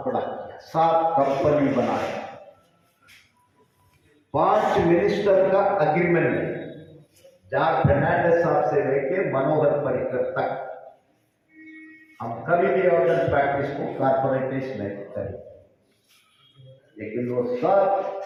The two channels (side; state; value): both; identical; correlation 1.00